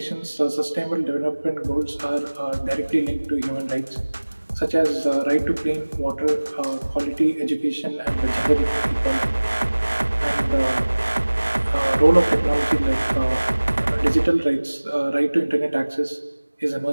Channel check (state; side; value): inverted; both; correlation -1.00